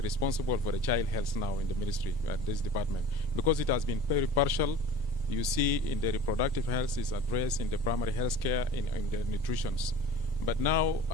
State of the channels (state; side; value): normal; both; correlation 0.41